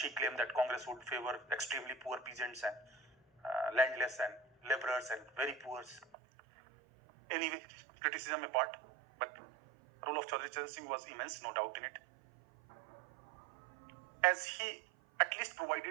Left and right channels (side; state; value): left; drops out; at 6.1 s